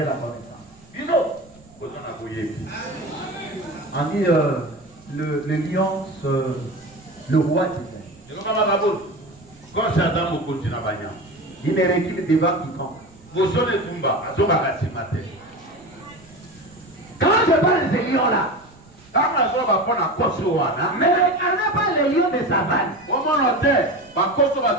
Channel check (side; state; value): right; noise; rumble, 27 dB below the sound